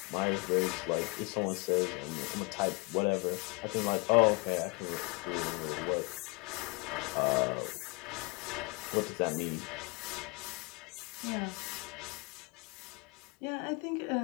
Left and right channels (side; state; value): right; quieter; 29.2 dB